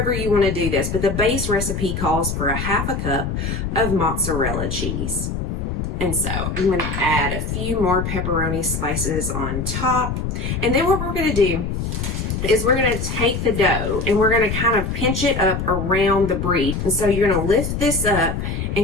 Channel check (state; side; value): noise; left; rumble, 3 dB below the sound